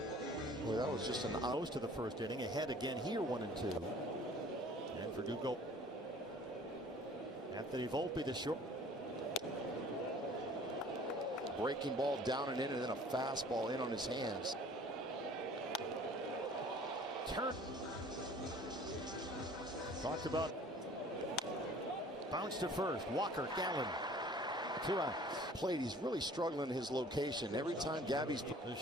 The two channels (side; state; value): both; normal; correlation 0.50